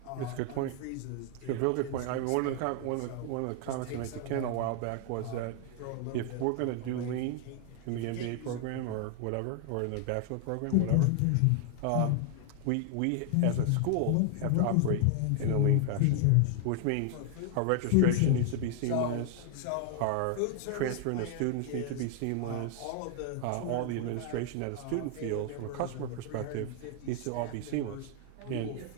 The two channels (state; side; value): different; both; correlation 0.00